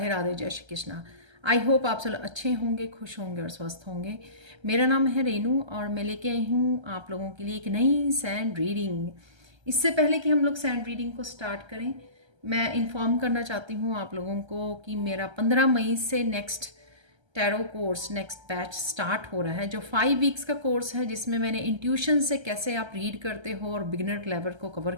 Radhe, जय श्री कृष्णा। आई होप आप सब अच्छे होंगे, खुश होंगे और स्वस्थ होंगे। मेरा नाम है रेनू और मैं लेके आई हूँ आप लोगों के लिए एक नई सैंड रीडिंग। इससे पहले कि हम लोग सैंड रीडिंग को स्टार्ट करें, मैं इन्फॉर्म करना चाहती हूँ आप लोगों को कि मेरा 15 मई से next tarot course, next batch start हो रहा है, जो 5 वीक्स का कोर्स है, जिसमें मैंने इंट्यूशन से कैसे आप रीड करते हो और बिगिनर लेवल को कवर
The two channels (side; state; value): left; late; 1.3 ms